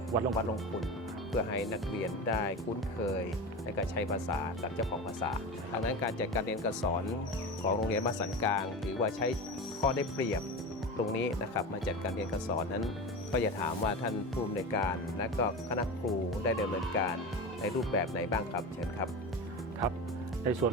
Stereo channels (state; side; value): normal; both; correlation 0.27